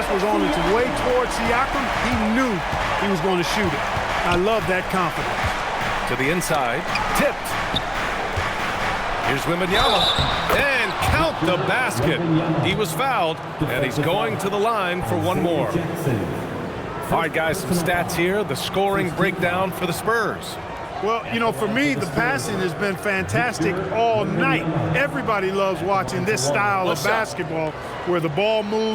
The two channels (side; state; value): both; identical; correlation 1.00